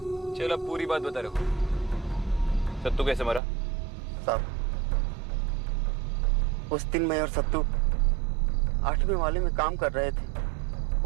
चलो, अब पूरी बात बता रहे हो। सत्तू कैसे मरा? साहब, उस दिन मैं और सत्तू 8वें वाले में काम कर रहे थे।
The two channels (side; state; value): left; drops out; at 3.4 s